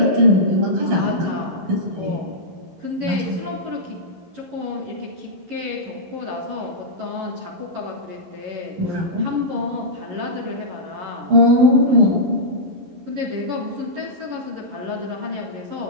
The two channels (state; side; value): late; left; 11 ms